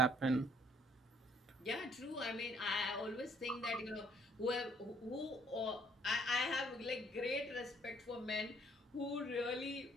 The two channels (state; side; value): normal; both; correlation 0.63